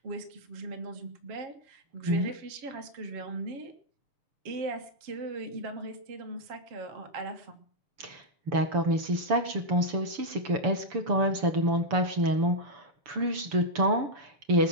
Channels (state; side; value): late; left; 6.9 ms